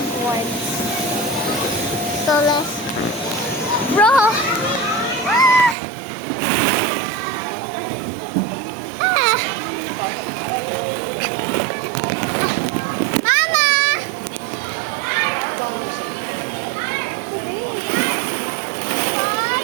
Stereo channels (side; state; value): left; drops out; at 5.8 s